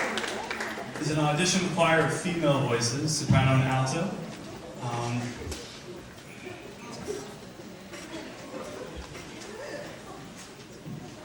is an audition choir of female voices, soprano and alto.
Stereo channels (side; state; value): both; identical; correlation 1.00